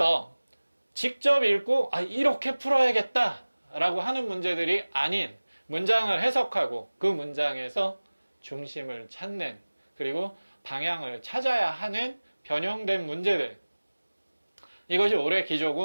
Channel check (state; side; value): inverted; both; correlation -1.00